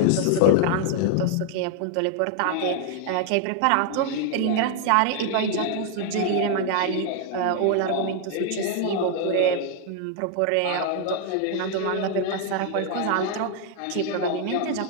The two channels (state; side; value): different; both; correlation 0.00